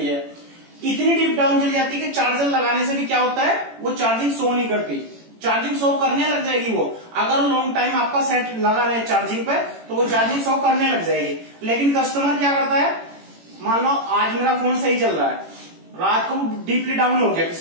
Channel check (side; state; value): left; late; 18 ms